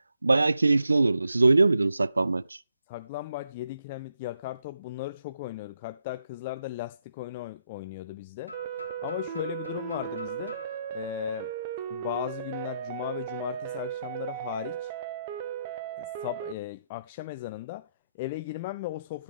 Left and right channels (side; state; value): both; inverted; correlation -0.80